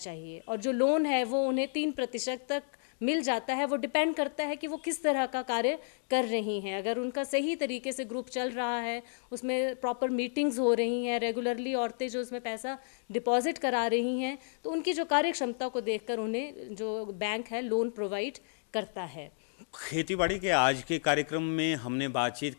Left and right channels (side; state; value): right; silent; digital silence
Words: और जो लोन है वो उन्हें 3% तक मिल जाता है। वो डिपेंड करता है कि वो किस तरह का कार्य कर रही हैं। अगर उनका सही तरीके से ग्रुप चल रहा है, उसमें प्रॉपर मीटिंग्स हो रही हैं, रेगुलरली औरतें जो उसमें पैसा डिपॉजिट करा रही हैं, तो उनकी जो कार्य क्षमता को देखकर उन्हें जो बैंक है लोन प्रोवाइड करता है। खेतीबाड़ी के आज के कार्यक्रम में हमने बातचीत